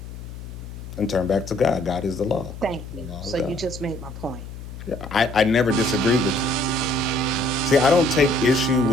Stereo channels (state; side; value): noise; left; hum, 12 dB below the sound